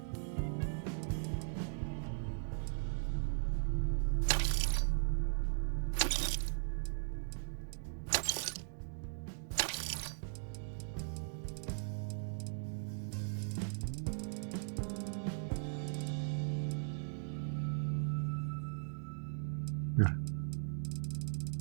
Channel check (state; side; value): silent; left; digital silence